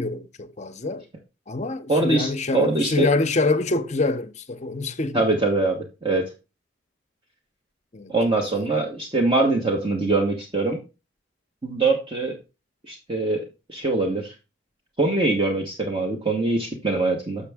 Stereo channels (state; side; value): normal; both; correlation 0.42